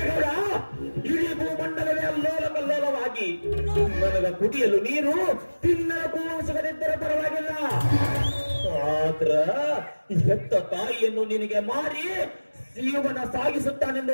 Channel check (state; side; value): inverted; both; correlation -1.00